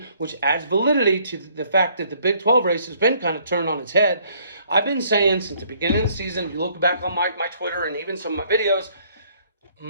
which adds validity to the fact that the Big 12 race has been kind of turned on its head. I've been saying since the beginning of the season, if you look back on my Twitter and even some of my videos,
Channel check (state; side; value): inverted; both; correlation -0.63